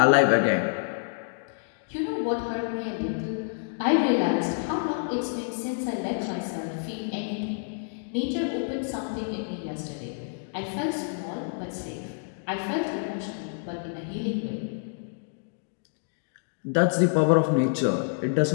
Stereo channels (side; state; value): right; silent; digital silence